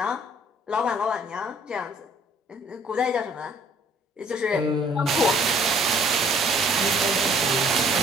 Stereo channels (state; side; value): normal; both; correlation 0.59